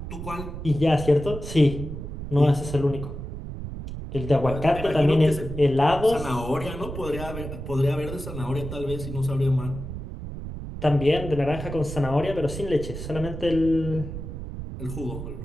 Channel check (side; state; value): right; noise; rumble, 8 dB below the sound